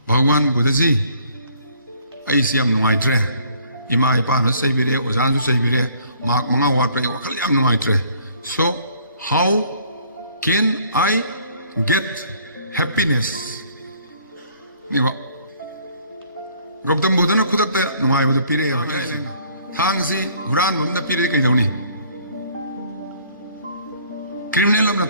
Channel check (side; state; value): both; inverted; correlation -0.59